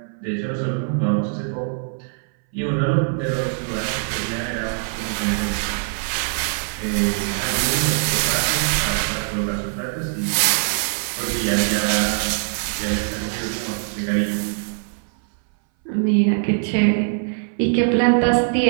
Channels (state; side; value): silent; left; 62 dB below the other